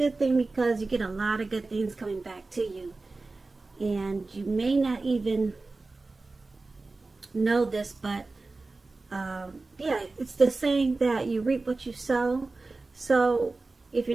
thing, because you get a lot of good things coming back to you. And you may not even know this, but yeah, it's the saying that you reap what you sow. So if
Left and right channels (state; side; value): quieter; left; 3.5 dB